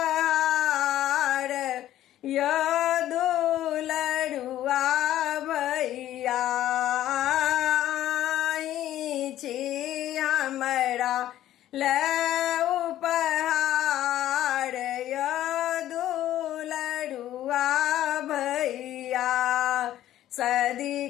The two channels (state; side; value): quieter; right; 12.9 dB